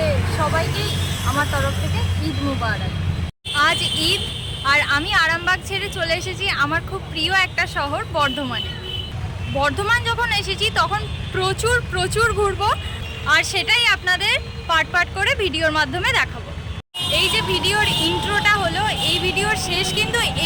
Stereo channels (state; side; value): identical; both; correlation 1.00